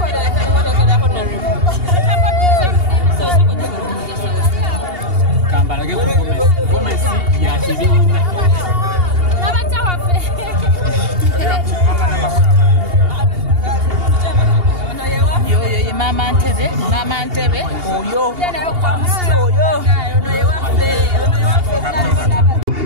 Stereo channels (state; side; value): late; left; 2.8 ms